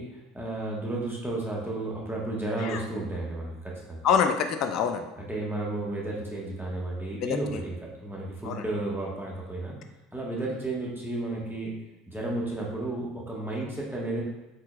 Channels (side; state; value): both; normal; correlation 0.48